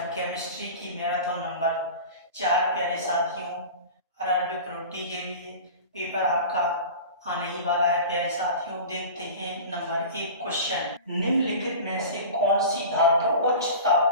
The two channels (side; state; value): both; inverted; correlation -0.35